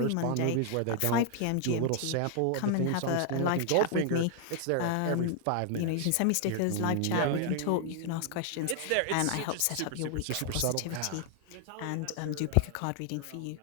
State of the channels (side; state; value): both; different; correlation 0.00